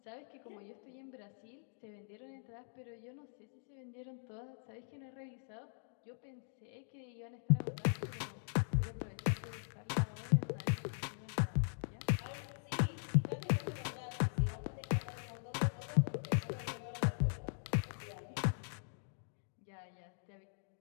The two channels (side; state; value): right; silent; digital silence